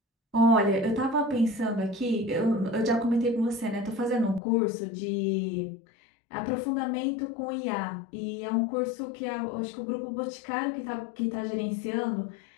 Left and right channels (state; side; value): drops out; right; at 4.4 s